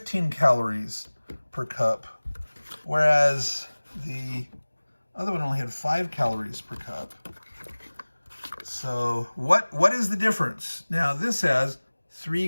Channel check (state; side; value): inverted; both; correlation -1.00